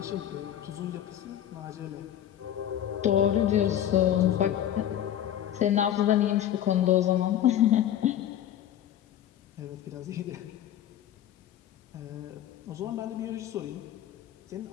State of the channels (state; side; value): quieter; right; 11.1 dB